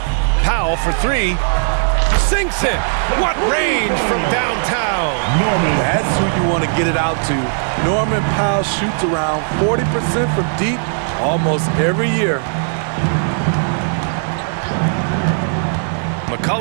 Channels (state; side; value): silent; left; digital silence